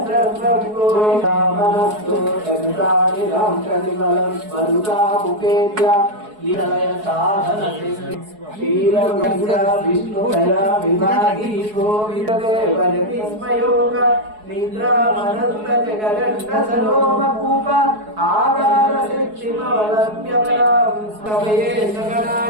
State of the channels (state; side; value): late; left; 4.7 ms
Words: गोविन्दमनस्तु जगदानिलं प्रतिफलं मरुतामुपेत्य लीलय साधन क्षीरमंगा विष्णुदया विभागी गोविन्ददेव जतिस्मयोग निद्रामनन्त जगदण्ड सरोमकूप आधार शिक्षिमवलभ्यपरां समये